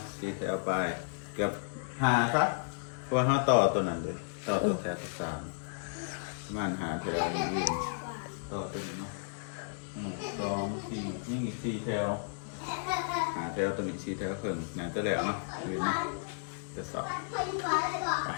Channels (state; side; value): silent; right; digital silence